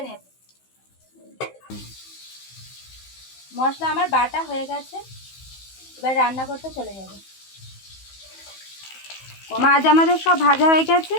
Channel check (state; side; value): late; right; 15 ms